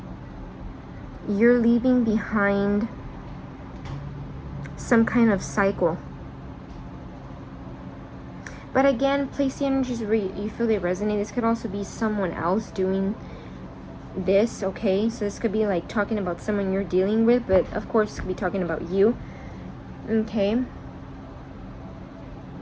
you're leaving behind some kind of cycle. But again, place the energies where you feel they resonate. This could also be someone else doing this, okay? So this could be like talking about someone you're dealing with, but of course it could be talking about you, okay?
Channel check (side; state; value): both; identical; correlation 1.00